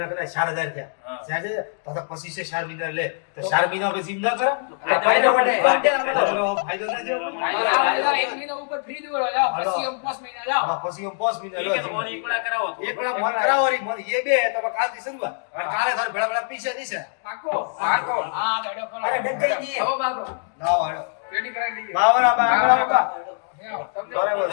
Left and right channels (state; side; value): silent; right; digital silence